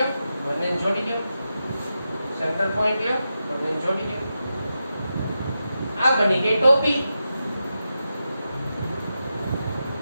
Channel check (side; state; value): both; inverted; correlation -0.89